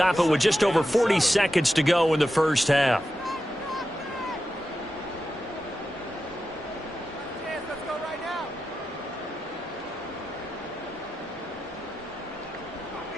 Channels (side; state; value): both; normal; correlation 0.90